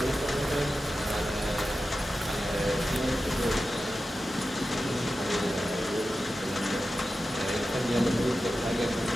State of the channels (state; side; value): normal; both; correlation 0.92